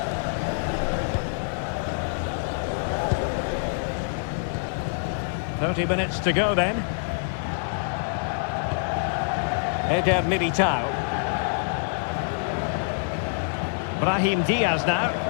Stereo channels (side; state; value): right; silent; 61 dB below the other